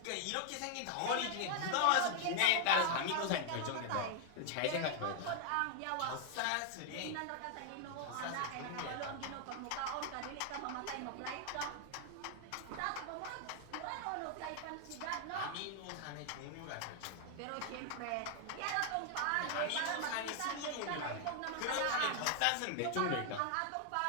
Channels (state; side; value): different; both; correlation 0.00